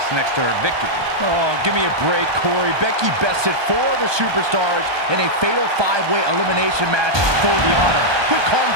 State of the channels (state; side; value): late; left; 1.2 ms